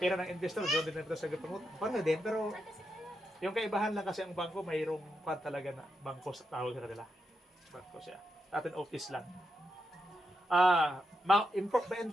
ng investor, doon din natin sa gapangut. Parang din, pero Yung kaibahan lang kasi ang bangko, mayroong kwan talaga na bangko sa tawag sa kanila. Bangko siya. Atin office lang.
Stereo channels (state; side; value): normal; both; correlation 0.85